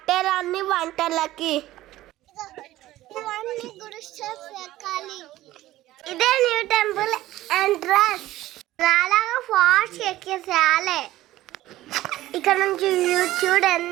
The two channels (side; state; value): left; quieter; 15.7 dB